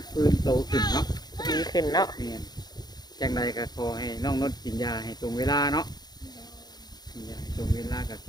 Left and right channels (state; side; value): late; right; 0.20 ms